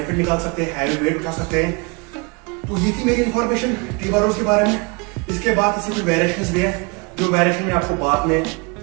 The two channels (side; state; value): left; quieter; 29.9 dB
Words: निकाल सकते हैं, हैवी वेट उठा सकते हैं। तो ये थी मेरी इंफॉर्मेशन T-बारोज के बारे में। इसके बाद इसमें कुछ वेरिएशंस भी है, जो वेरिएशन मैं आपको बाद में